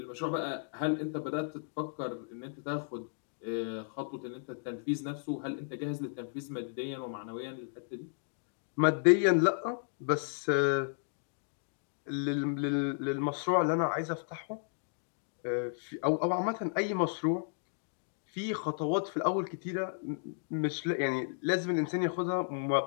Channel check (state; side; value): silent; right; digital silence